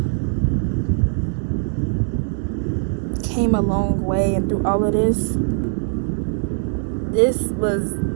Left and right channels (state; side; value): silent; left; 64 dB below the other